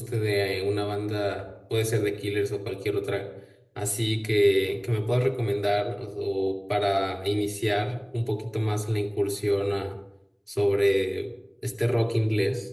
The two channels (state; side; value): identical; both; correlation 1.00